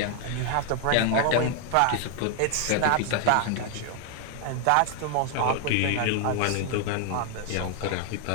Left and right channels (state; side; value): different; both; correlation 0.00